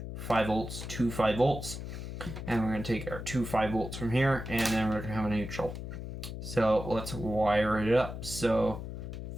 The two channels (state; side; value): noise; left; hum, 7 dB below the sound